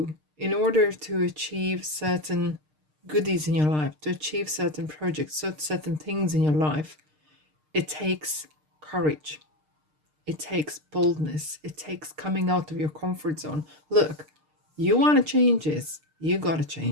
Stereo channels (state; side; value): late; left; 6.6 ms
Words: in order to achieve certain goodies in your life, to achieve certain projects, certain things in your life, it takes courage. It takes boldness. It takes coming out of your comfort zone. Look, you want to change this, you got to